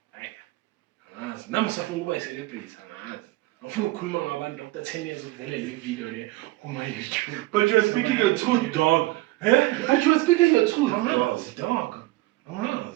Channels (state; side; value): quieter; left; 18.9 dB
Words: I'm a celebrity. After 10 years of video on my YouTube. But you are speaking your truth, dog. But you are speaking your truth, dog.